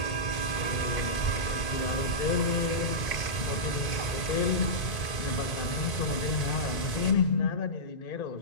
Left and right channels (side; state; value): right; late; 1.8 ms